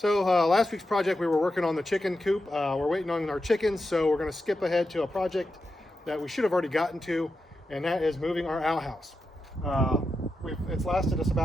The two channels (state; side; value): normal; both; correlation 0.88